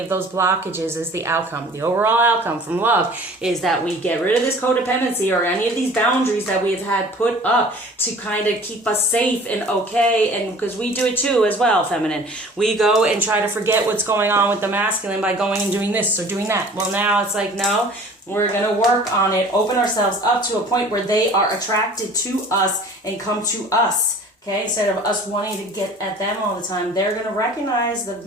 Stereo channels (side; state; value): both; normal; correlation 0.47